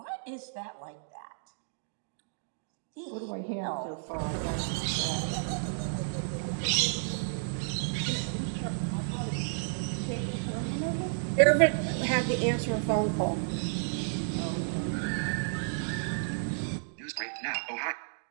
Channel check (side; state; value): left; silent; digital silence